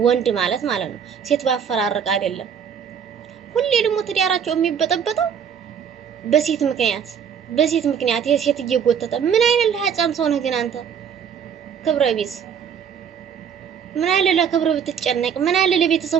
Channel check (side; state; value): left; quieter; 7.6 dB